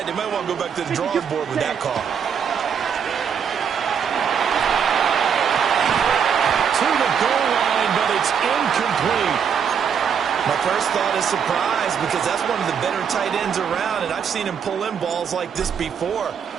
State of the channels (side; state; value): left; quieter; 7.4 dB